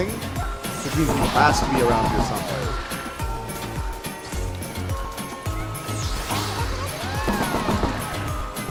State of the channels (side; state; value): both; identical; correlation 1.00